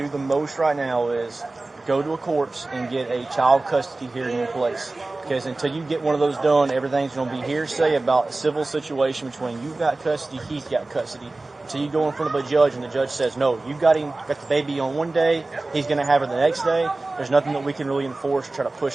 the most right now is go to a courts and get a child custody hearing in place. Because until you get one of those done, everything's going to be hearsay about a civil situation between you've got custody, he's got custody. Until you go in front of a judge and the judge says, no, you got the baby on one day, he's going to have her the next day, there's nothing that we can really enforce or try to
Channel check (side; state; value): left; quieter; 3.1 dB